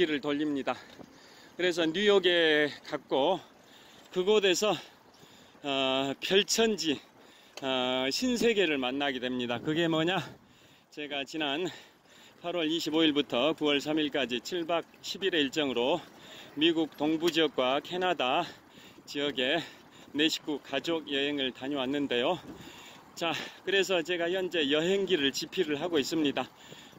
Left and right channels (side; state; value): both; identical; correlation 1.00